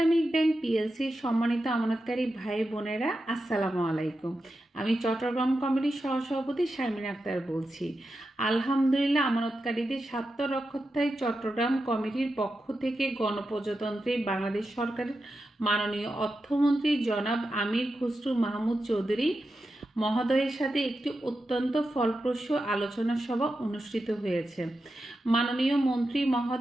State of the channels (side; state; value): both; normal; correlation 0.90